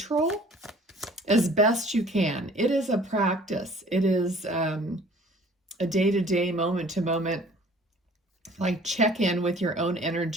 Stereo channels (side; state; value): both; normal; correlation 0.51